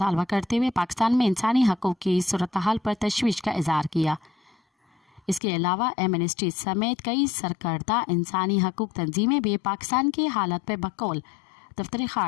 करते हुए पाकिस्तान में इंसानी हकूक़ की सूरत हाल पर तशवीश का इज़हार किया। इसके अलावा एमनेस्टी समेत कई सरकर्दा इंसानी हकूक़ तंजीमें भी पाकिस्तान की हालत पर बकौल दफ्तर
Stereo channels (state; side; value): drops out; right; at 5.4 s